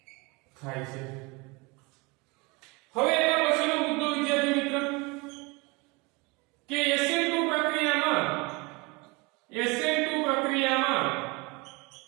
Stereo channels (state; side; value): quieter; left; 26.6 dB